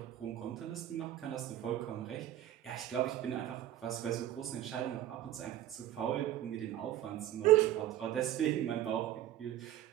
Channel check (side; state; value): left; quieter; 12.7 dB